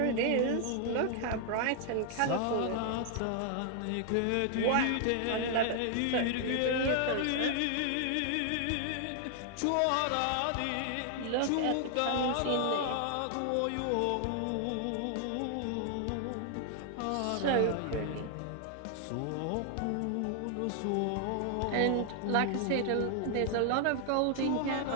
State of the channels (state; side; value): different; both; correlation 0.00